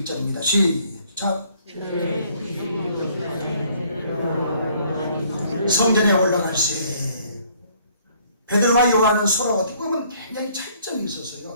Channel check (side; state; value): both; inverted; correlation -0.62